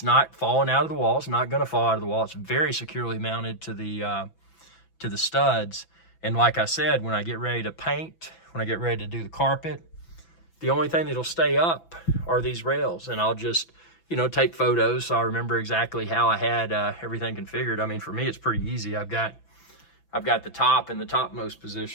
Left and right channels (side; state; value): right; late; 6.0 ms